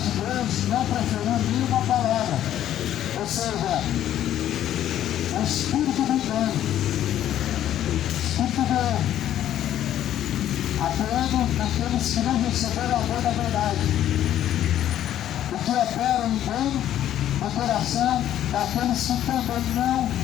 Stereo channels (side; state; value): right; quieter; 11.6 dB